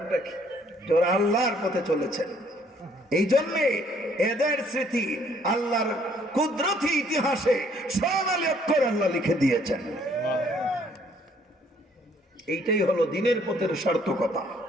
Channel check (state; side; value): normal; both; correlation 0.63